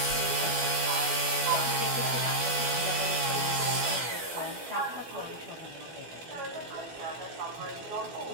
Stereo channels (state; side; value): late; left; 12 ms